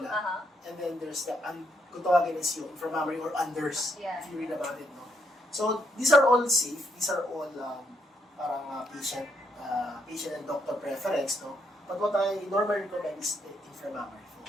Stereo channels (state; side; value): normal; both; correlation 0.75